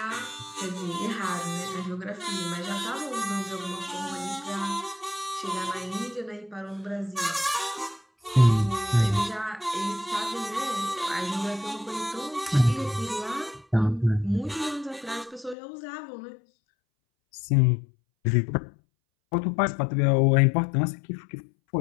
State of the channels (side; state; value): right; drops out; at 15.6 s